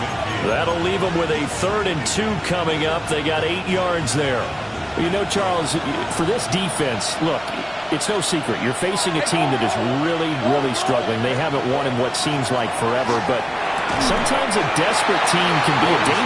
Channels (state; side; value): identical; both; correlation 1.00